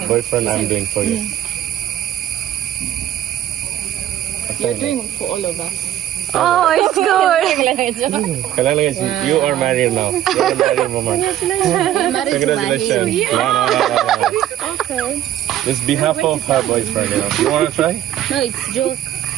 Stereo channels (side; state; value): left; quieter; 12.1 dB